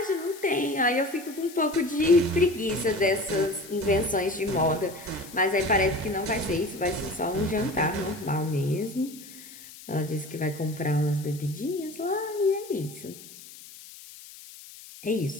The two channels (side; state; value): left; noise; hiss, 17 dB below the sound